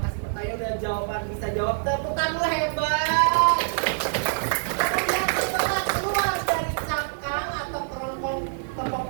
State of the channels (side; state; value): left; silent; digital silence